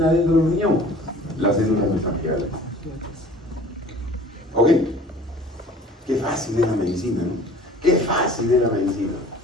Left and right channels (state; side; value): normal; both; correlation 0.48